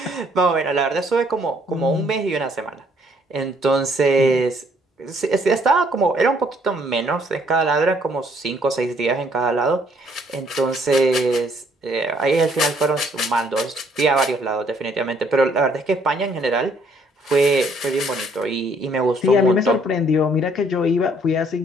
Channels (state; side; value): normal; both; correlation 0.65